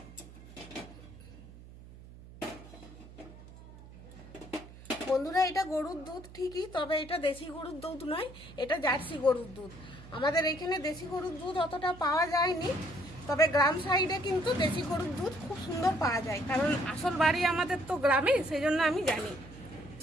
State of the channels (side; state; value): right; noise; hum, 18 dB below the sound